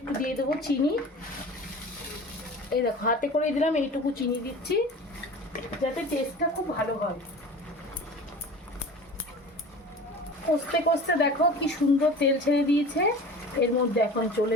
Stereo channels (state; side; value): normal; both; correlation 0.38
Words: দিয়ে দেবো চিনি। এই দেখো হাতে করে দিলাম, এইটুকু চিনি দিচ্ছি। যাতে টেস্টটা খুব ভালো হয়। কষতে কষতে দেখো কি সুন্দর তেল ছেড়ে দিয়েছে। এর মধ্যে এখন